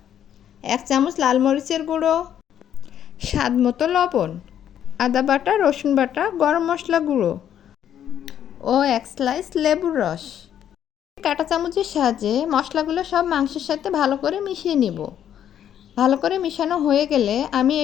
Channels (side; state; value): right; quieter; 9.9 dB